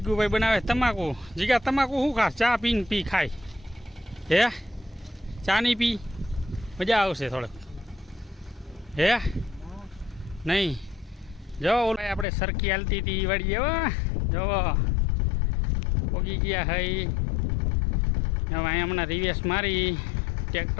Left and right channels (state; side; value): drops out; right; at 12.2 s